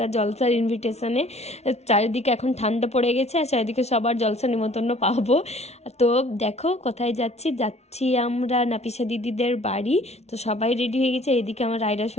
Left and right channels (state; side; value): late; right; 0.31 ms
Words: জলসার ইনভিটেশনে। চারিদিকে এখন ঠান্ডা পড়ে গেছে আর চারিদিকে সবার জলসা নিমন্ত্রণ পাবো। তো দেখো কোথায় যাচ্ছি আমরা নাপিসা দিদিদের বাড়ি। তো সবাই রেডি হয়ে গেছে। এদিকে আমার রায়রা